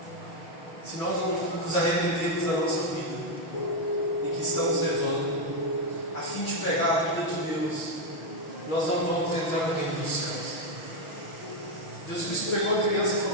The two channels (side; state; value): right; late; 6.2 ms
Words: Se nós não nos arrependermos da nossa vida em que estamos levando, a fim de pregar a vida de Deus, nós não vamos entrar no reino dos céus. Jesus Cristo pegou a criança e